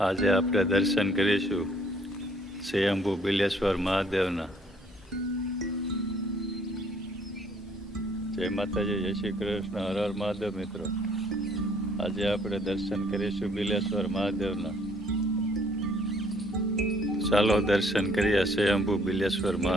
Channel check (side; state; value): both; normal; correlation 0.62